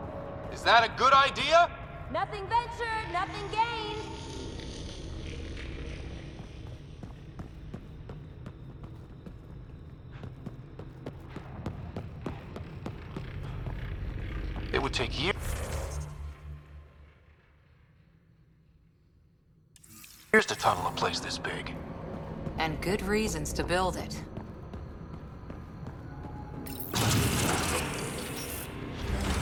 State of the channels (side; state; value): both; identical; correlation 1.00